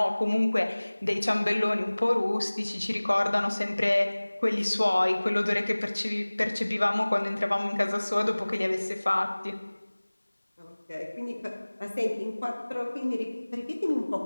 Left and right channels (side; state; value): both; inverted; correlation -1.00